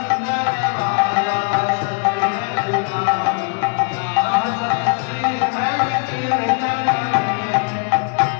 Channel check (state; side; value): quieter; right; 37.7 dB